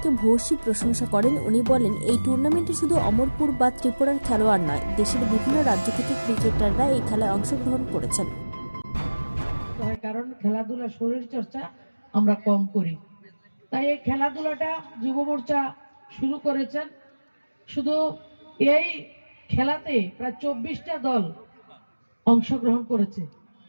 ভূয়সী প্রশংসা করেন। উনি বলেন, এই টুর্নামেন্টে শুধু অমরপুর বা ত্রিপুরার খেলোয়াড় নয়, দেশের বিভিন্ন রাজ্য থেকে ক্রিকেটাররা এই খেলায় অংশগ্রহণ করেছেন। কারণ খেলাধুলা শরীর চর্চা আমরা কম করি, তাই এই খেলাধুলাটা যুব মোর্চা শুরু করেছেন। শুধু এই খেলাতে প্রায় 24টা দল অংশগ্রহণ করেছে,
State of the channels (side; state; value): both; inverted; correlation -1.00